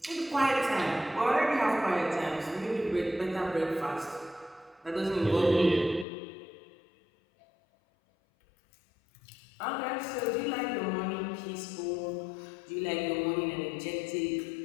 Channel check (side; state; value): right; drops out; at 6.1 s